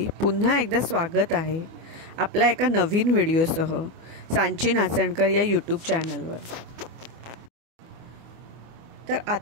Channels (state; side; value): late; left; 24 ms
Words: पुन्हा एकदा स्वागत आहे आपल्या एका नवीन व्हिडिओसह सांची नाचणकर या यूट्यूब चॅनलवर। तर